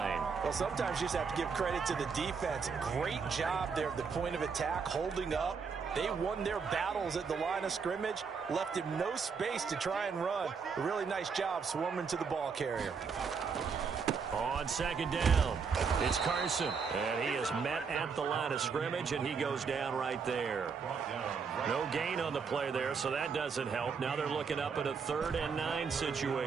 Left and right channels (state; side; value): quieter; left; 5.7 dB